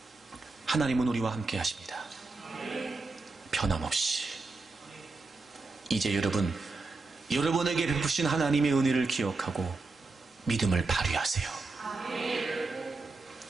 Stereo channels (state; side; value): quieter; left; 3.7 dB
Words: 하나님은 우리와 함께 하십니다. 변함없이. 이제 여러분에게 베푸신 하나님의 은혜를 기억하고 믿음을 발휘하세요.